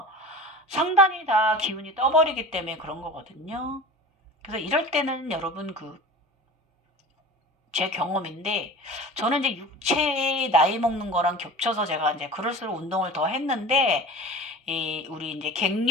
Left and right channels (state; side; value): normal; both; correlation 0.36